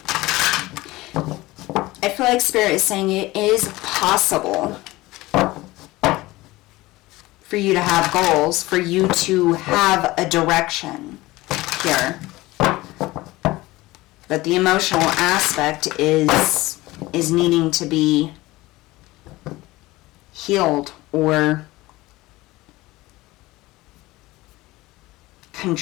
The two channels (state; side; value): quieter; right; 19.4 dB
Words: I feel like Spirit is saying it is possible for you to have goals, for you to have a direction here. But the emotional aspect is needing to be healed or